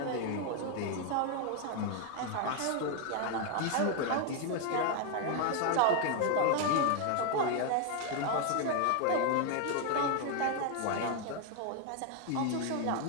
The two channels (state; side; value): different; both; correlation 0.01